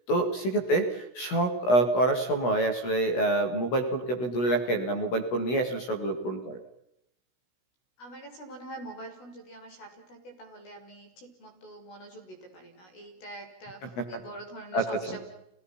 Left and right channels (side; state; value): right; late; 16 ms